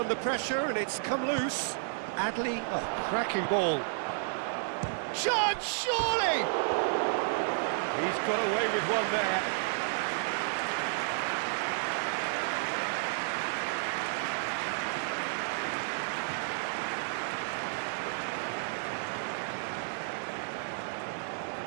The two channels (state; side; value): silent; left; 57 dB below the other